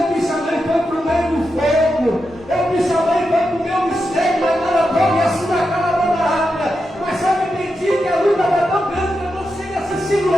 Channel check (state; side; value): normal; both; correlation 0.87